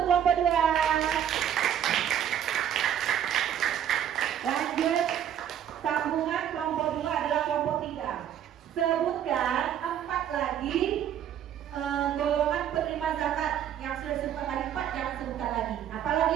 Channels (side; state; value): left; quieter; 9.9 dB